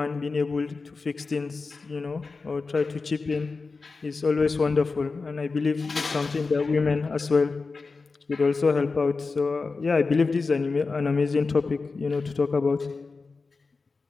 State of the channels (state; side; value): quieter; right; 4.2 dB